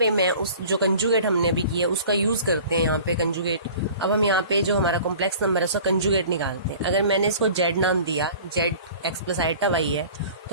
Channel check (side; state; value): both; inverted; correlation -0.44